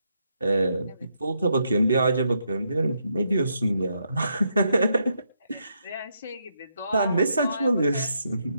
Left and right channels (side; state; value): both; inverted; correlation -0.79